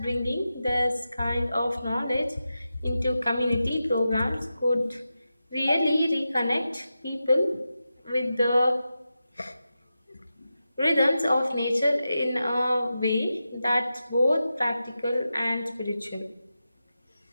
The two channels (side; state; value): both; inverted; correlation -0.91